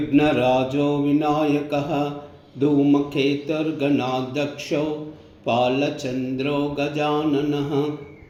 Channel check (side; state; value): both; identical; correlation 1.00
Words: विनायकः धूमकेतुर्गणाध्यक्षो बालचन्द्रो गजाननः